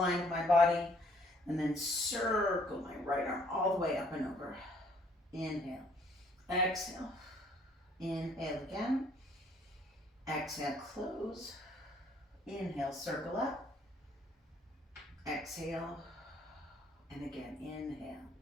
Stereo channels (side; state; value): both; normal; correlation 0.63